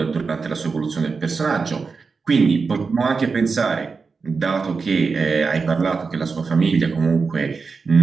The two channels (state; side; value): quieter; left; 4.8 dB